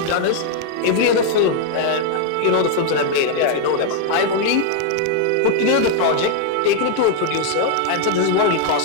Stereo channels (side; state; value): both; different; correlation 0.00